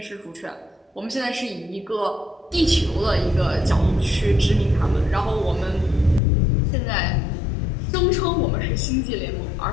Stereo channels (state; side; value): drops out; right; at 6.2 s